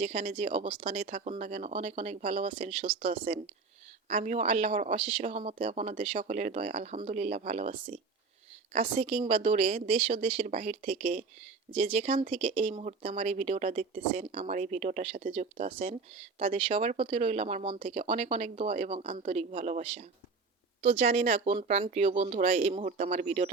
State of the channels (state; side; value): quieter; left; 4.4 dB